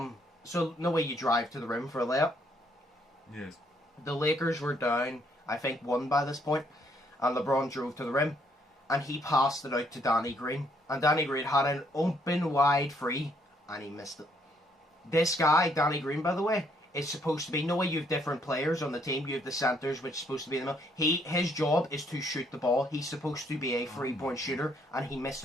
no way you drive to the rim for a layup. Yes. The Lakers were down, I think, 1 by this point, and LeBron drove to the rim, and he passed it out to Danny Green. And Danny Green had an open wide free, and he missed it. This guy, Danny Green, by the way, is supposed to be, no way you have different players on the team, you have the centers, which is supposed to be in the middle. His job is to shoot the ball. He's supposed to be a 3-point shooter, and he missed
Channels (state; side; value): normal; both; correlation 0.69